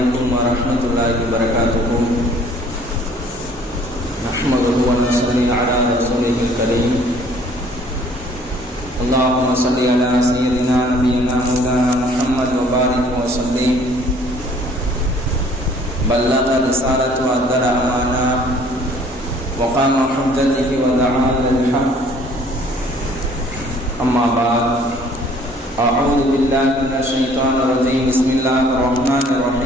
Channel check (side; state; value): both; normal; correlation 0.56